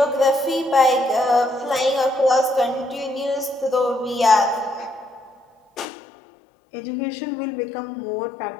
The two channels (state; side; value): drops out; right; at 5.9 s